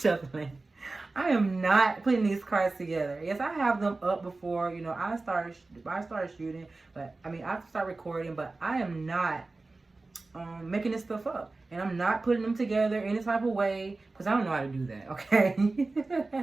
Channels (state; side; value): quieter; left; 3.4 dB